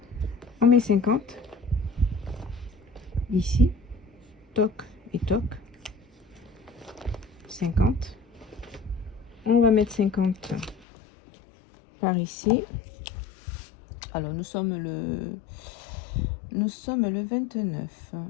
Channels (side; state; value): right; drops out; at 10.9 s